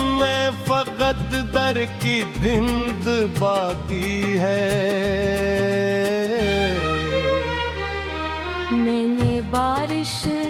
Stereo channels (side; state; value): both; identical; correlation 1.00